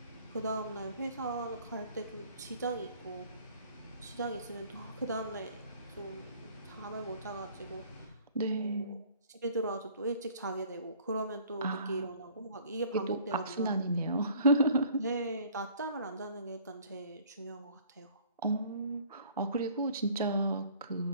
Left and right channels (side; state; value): both; inverted; correlation -0.54